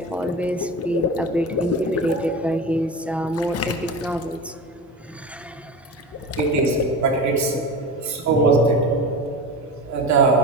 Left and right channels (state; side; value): normal; both; correlation 0.29